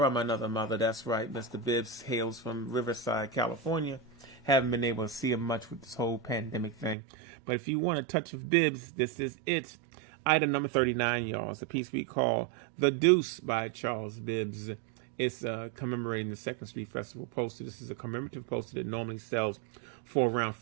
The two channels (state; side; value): drops out; left; at 7.0 s